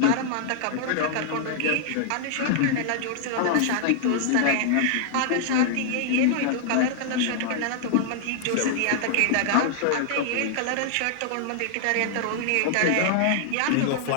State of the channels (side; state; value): both; different; correlation -0.01